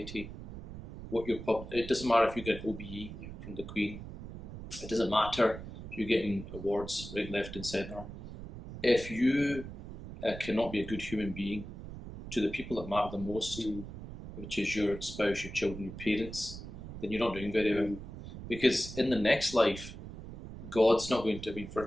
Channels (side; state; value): right; noise; rumble, 11 dB below the sound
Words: It doesn't matter if you get OBE from the Queen. It doesn't matter if you're getting awards right, left and centre. If you cannot be a good human being to the people that matter the most, which is your spouse, your children, your parents, then you're not doing very well. Because in the next life, God's not going to,